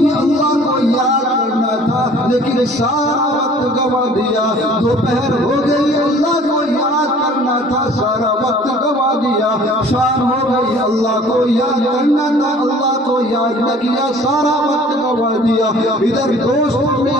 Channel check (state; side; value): normal; both; correlation 0.51